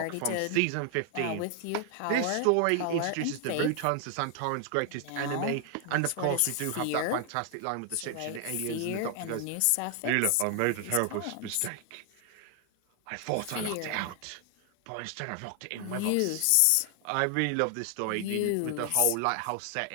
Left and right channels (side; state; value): both; different; correlation 0.00